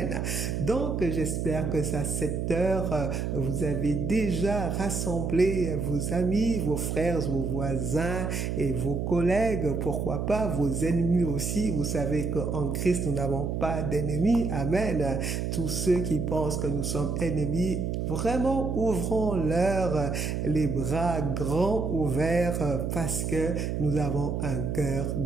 Donc, j'espère que à cette heure, vous avez déjà rassemblé vos amis, vos frères, vos voisins et vos collègues, pourquoi pas vos ennemis aussi. Vous savez qu'en Christ, nous n'avons pas d'ennemis. Amen. Tous ceux qui pensent que nous sommes ennemis, vraiment ouvrons-leur les bras grands ouverts parce que nous avons un cœur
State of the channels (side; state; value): right; noise; hum, 1 dB below the sound